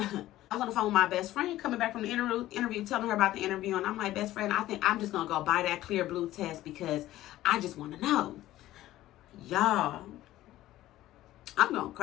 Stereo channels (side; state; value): right; quieter; 15.0 dB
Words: was on the phone with my best friend coming back from the interview, telling her about the interview. And I'm like, best friend, I think I'm just going to go buy that clear blue test because I just want to know. Y'all, I'm going to